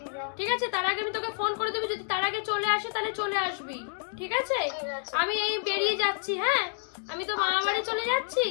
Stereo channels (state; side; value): silent; right; digital silence